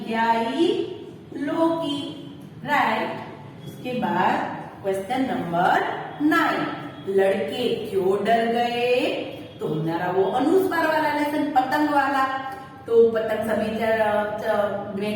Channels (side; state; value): both; identical; correlation 1.00